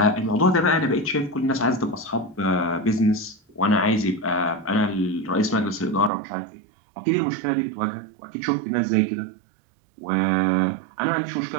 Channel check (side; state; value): left; drops out; at 6.1 s